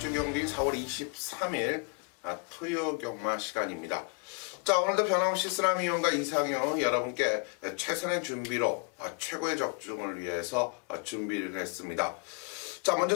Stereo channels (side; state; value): right; quieter; 34.8 dB